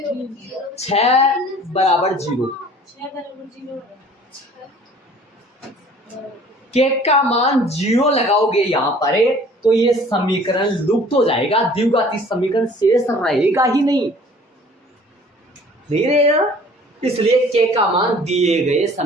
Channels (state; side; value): normal; both; correlation 0.51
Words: 6 बराबर 0। के का मान 0 लगाओगे यहां पर, तो ये समीकरण लुप्त हो जाएगा, द्विघाती समीकरण शेष रहेगा ही नहीं रहेगा। इसलिए के का मान दिए गए